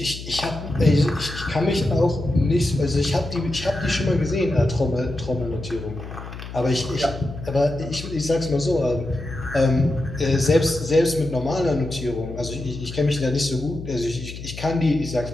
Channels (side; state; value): left; noise; hum, 11 dB below the sound